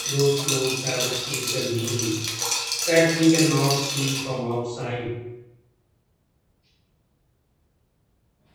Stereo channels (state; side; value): identical; both; correlation 1.00